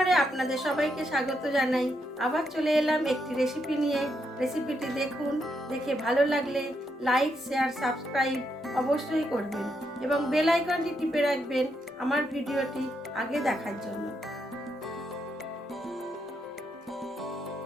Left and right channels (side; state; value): both; normal; correlation 0.80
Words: আপনাদের সবাইকে স্বাগত জানাই। আবার চলে এলাম একটি রেসিপি নিয়ে। রেসিপিটি দেখুন, দেখে ভালো লাগলে লাইক, শেয়ার, সাবস্ক্রাইব অবশ্যই করবেন এবং বেল আইকনটি টিপে রাখবেন আমার ভিডিওটি আগে দেখার জন্য।